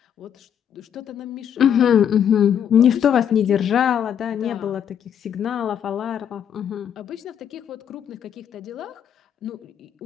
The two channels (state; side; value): quieter; right; 8.8 dB